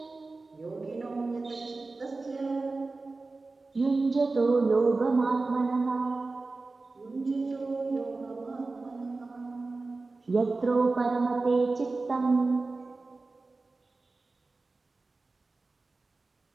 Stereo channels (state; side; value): quieter; left; 3.6 dB